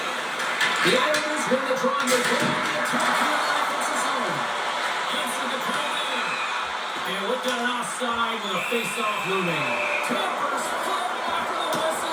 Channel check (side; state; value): both; identical; correlation 1.00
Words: The Islanders win the draw and they go on the attack here in the offensive zone. Answer the call in. And we've got an offside with a face-off looming. Tampers fall after the